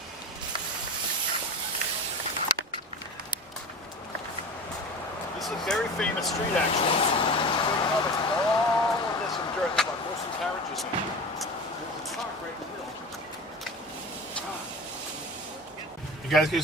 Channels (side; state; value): both; normal; correlation 0.31